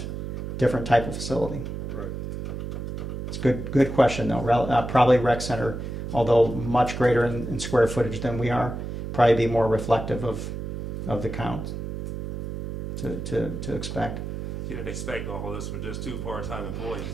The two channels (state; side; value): noise; right; hum, 6 dB below the sound